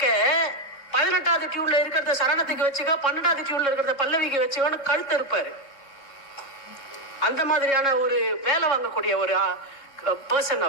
18வது டியூன்ல இருக்கிறத சரணத்துக்கு வச்சுக்கோ, 12வது டியூன்ல இருக்கிறத பல்லவிக்கு வச்சுக்கோன்னு கழுத்து இருப்பாரு. அந்த மாதிரியான ஒரு வேலை வாங்கக்கூடிய ஒரு பர்சன்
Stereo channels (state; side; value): late; right; 3.6 ms